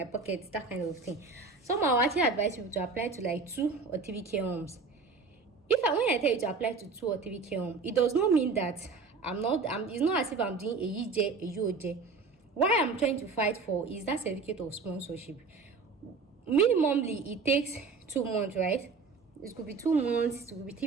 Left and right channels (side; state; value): left; quieter; 4.4 dB